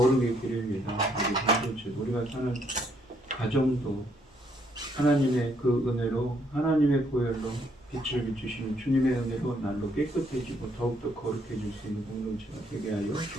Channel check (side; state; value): both; normal; correlation 0.71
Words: 길입니다. 우리 공동체 우리가 사는 가정도 하나님의 그 은혜로 하나님의 보혈로 빛을 비추시는 주님의 은혜로 날로 깨끗해지고 더욱더 거룩해질 수 있는 공동체가 되게 하여